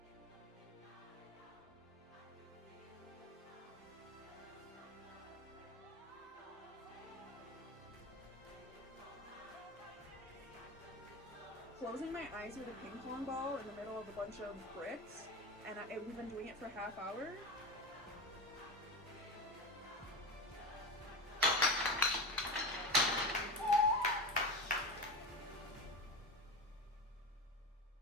Closing my eyes with a ping pong ball in the middle of a bunch of bricks, and we've been doing it for a half hour.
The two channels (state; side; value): normal; both; correlation 0.23